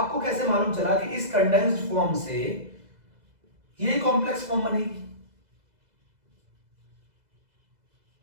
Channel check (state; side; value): late; left; 2.0 ms